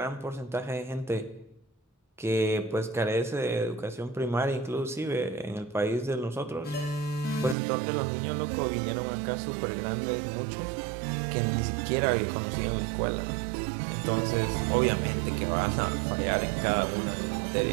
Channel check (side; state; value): left; drops out; at 7.6 s